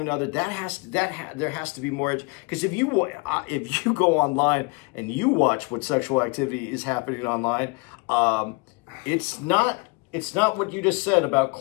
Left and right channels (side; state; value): right; quieter; 29.3 dB